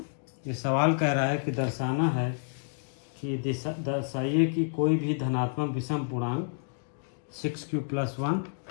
ये सवाल कह रहा है कि दर्शाना है कि दर्शाइए कि कोई भी धनात्मक विषम पूर्णांक 6q+1,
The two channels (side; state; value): right; silent; digital silence